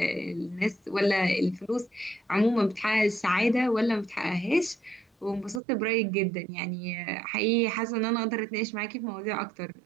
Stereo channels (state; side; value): drops out; left; at 5.6 s